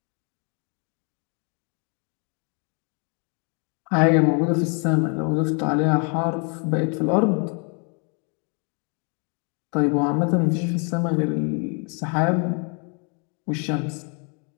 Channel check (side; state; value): right; quieter; 37.1 dB